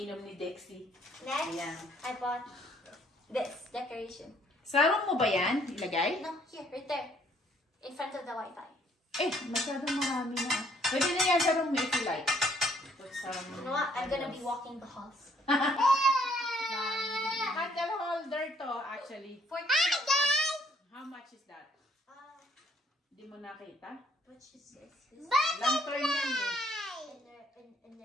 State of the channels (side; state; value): both; normal; correlation 0.64